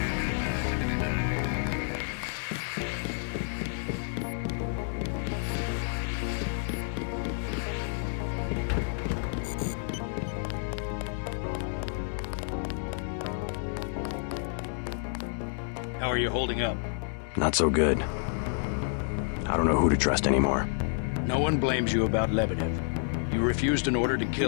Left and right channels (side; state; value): right; silent; 58 dB below the other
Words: How are you holding up? Not so good. I don't know who to trust anymore. No one blames you about Lebedev. You refused an order to